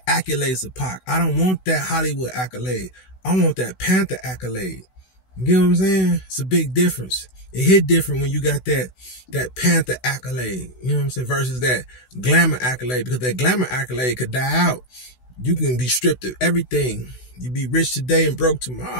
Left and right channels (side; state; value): right; late; 16 ms